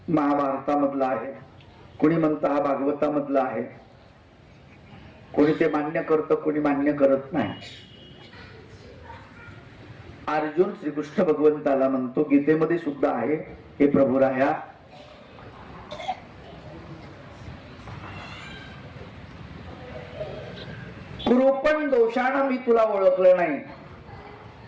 महाभारतामधला आहे, कोणी म्हणतं हा भागवतामधला आहे. कोणी ते मान्य करतं, कोणी मान्य करत नाही. अर्जुन श्रीकृष्ण भगवंताला म्हणतो, गीतेमध्ये सुद्धा आहे, हे प्रभुराया, कृपण दोषानं मी तुला ओळखलं नाही.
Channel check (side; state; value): both; identical; correlation 1.00